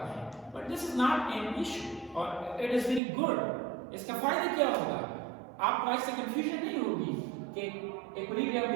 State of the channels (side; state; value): left; drops out; at 3.0 s